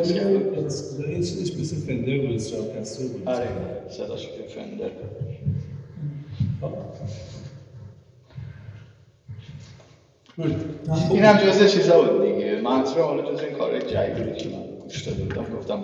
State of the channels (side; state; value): both; identical; correlation 1.00